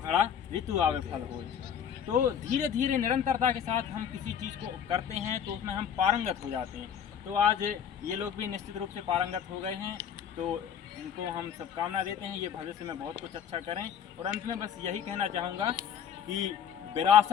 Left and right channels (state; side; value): quieter; right; 8.4 dB